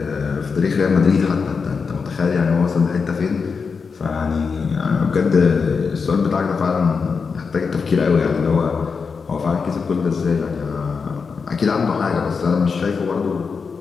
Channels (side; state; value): right; quieter; 5.3 dB